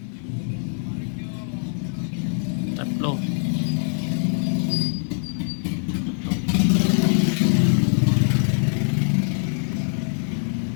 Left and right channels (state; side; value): silent; right; digital silence